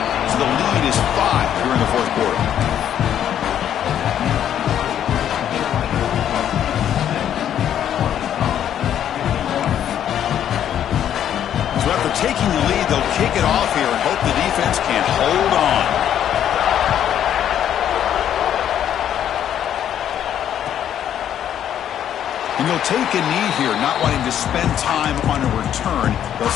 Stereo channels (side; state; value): right; quieter; 10.1 dB